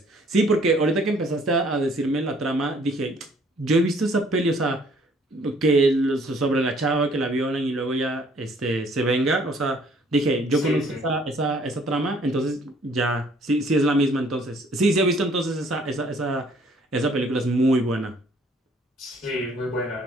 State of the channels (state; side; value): normal; both; correlation 0.60